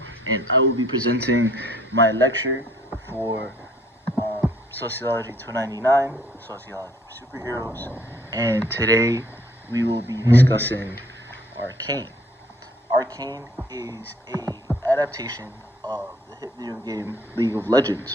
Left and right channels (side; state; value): both; normal; correlation 0.61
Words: and I will be presenting my lecture for Sociology 299, Sociology for Superheroes. And today we will be discussing Arcane. Arcane is a adaptation of the hit video game League of